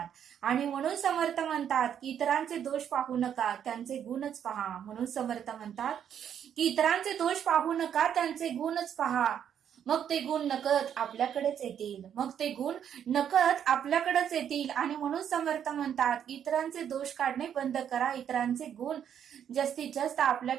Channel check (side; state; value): left; quieter; 9.0 dB